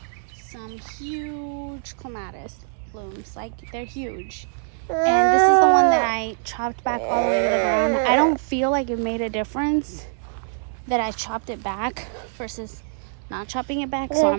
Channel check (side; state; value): left; silent; 61 dB below the other